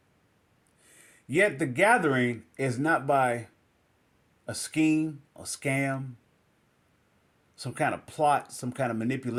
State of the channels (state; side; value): identical; both; correlation 1.00